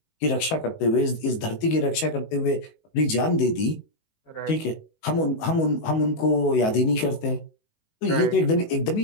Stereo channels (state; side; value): late; right; 19 ms